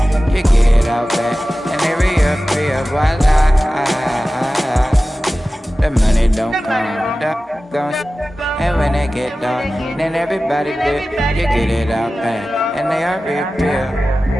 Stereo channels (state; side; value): normal; both; correlation 0.95